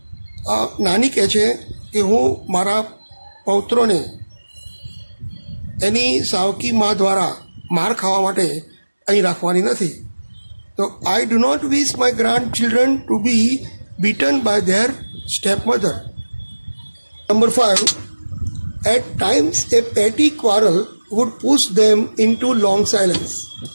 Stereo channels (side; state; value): both; inverted; correlation -1.00